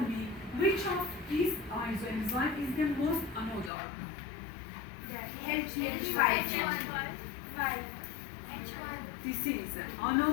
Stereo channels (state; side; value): drops out; right; at 3.7 s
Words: which of these isoenzyme is the most anodal? H5. This is